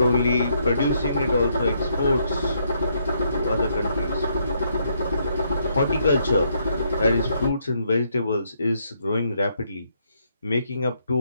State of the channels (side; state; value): both; inverted; correlation -0.74